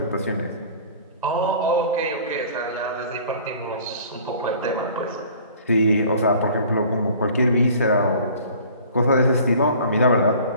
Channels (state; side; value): inverted; both; correlation -0.48